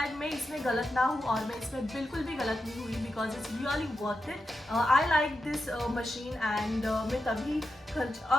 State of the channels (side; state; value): both; normal; correlation 0.89